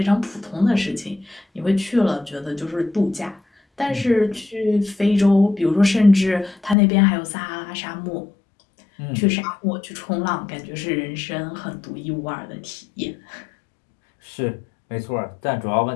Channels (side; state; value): right; drops out; at 6.8 s